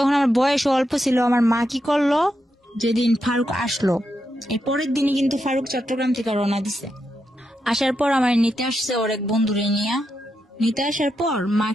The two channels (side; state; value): both; normal; correlation 0.85